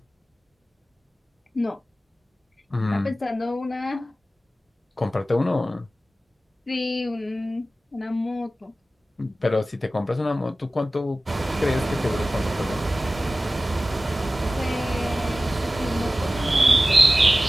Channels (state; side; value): normal; both; correlation 0.96